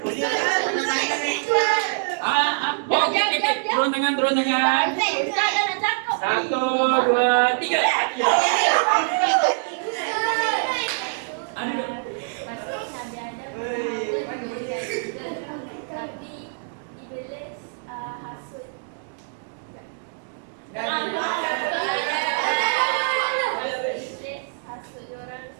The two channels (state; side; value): silent; left; digital silence